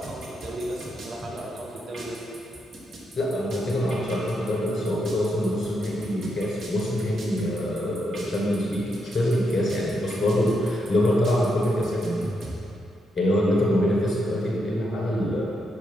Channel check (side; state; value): both; normal; correlation 0.81